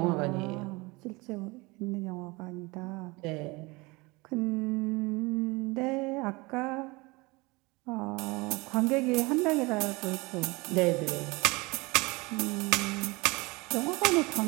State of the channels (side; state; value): left; quieter; 24.7 dB